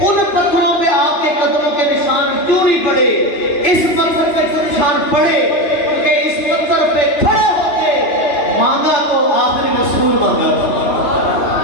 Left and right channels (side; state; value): right; late; 2.9 ms